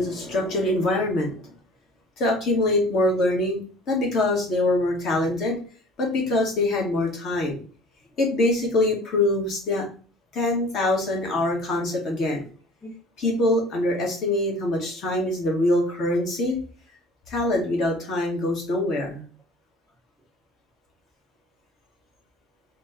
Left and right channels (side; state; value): both; normal; correlation 0.47